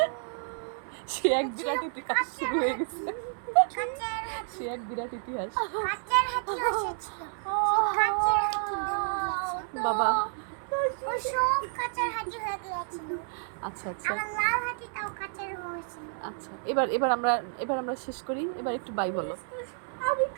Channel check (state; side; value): silent; left; 58 dB below the other